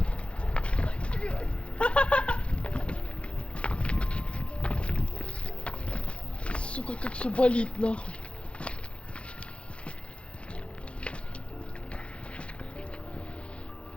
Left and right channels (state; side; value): late; right; 0.059 ms